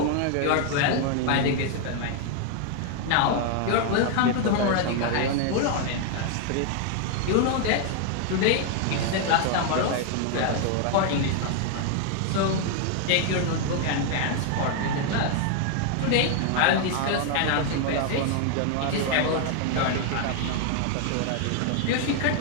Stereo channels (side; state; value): both; different; correlation 0.00